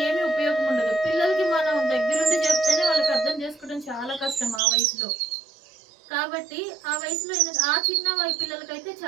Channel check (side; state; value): left; drops out; at 4.6 s